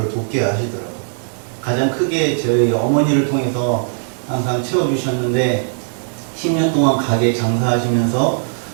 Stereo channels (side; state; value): left; silent; digital silence